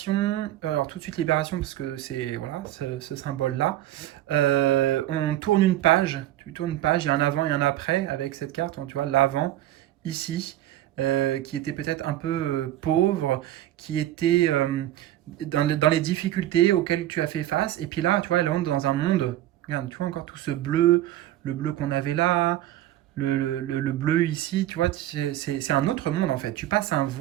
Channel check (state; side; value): quieter; left; 13.8 dB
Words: alors tout de suite libération parce que c'est voilà ce symbole-là. On tourne une page, tu tournes une page, il y a un avant et un après avec cette carte, tu vois, l'avant ici, qui était peut-être un peu pauvre, qui était dans les difficultés auxquelles tu as fait face, et puis là, tu vois, elle entre dans un monde, regarde, tu vois encore tout ce bleu, le bleu qu'on avait là, le bleu ici, tu vois, c'est un autre monde en fait. Tu passes un